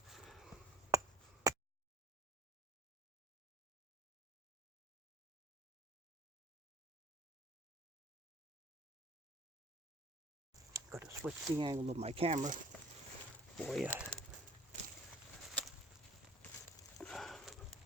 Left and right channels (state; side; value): normal; both; correlation 0.48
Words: Got to switch the angle of my camera for you.